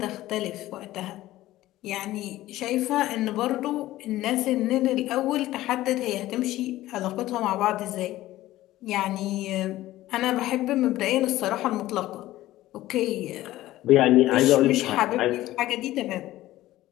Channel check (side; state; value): right; quieter; 15.7 dB